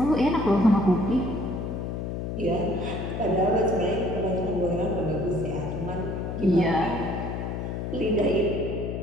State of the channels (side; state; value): left; noise; hum, 4 dB below the sound